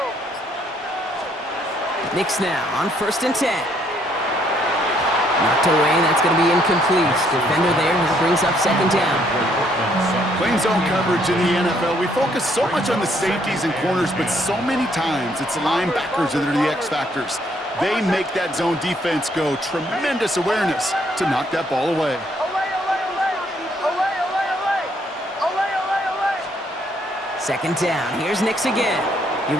Nix now on 1st and 10. Knocked away, that's going to be incomplete. Defender there who brings up 2nd down. Playing zone coverage in the NFL, we focus so much on the safeties and corners, but so many times it's the linebackers that are the X factors. They make that zone defense go. Tremendous awareness to knock that ball away. Second down, here's Nix again. He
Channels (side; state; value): both; normal; correlation 0.68